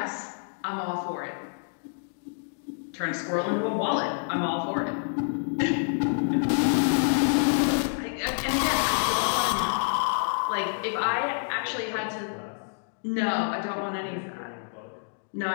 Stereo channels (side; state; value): right; silent; digital silence